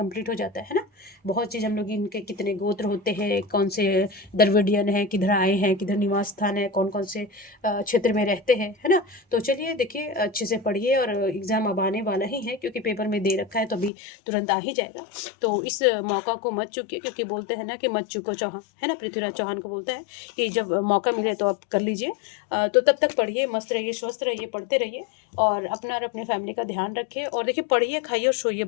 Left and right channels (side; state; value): right; drops out; at 13.9 s